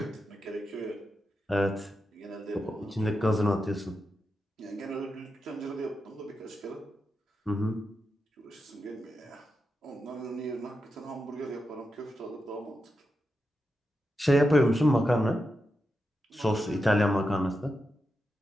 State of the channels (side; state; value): both; normal; correlation 0.88